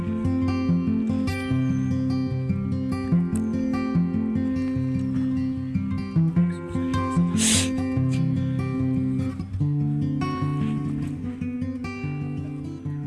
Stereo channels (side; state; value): both; identical; correlation 1.00